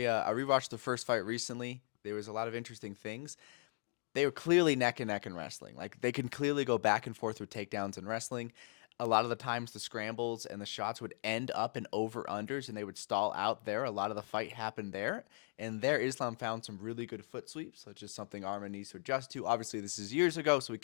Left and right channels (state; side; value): silent; right; 52 dB below the other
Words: the first fight recently. There was a lot of interesting things. They were clearly neck and neck in wrestling. Like, they can clearly go back and forth with takedowns in wrestling. A lot of the times the scrambles and the shots would end up in over-unders and they would stall out there. A lot of the fight happened there. And there, Islam found some really good foot sweeps, which is something Arman needs to adjust to. Obviously, this is years ago, so we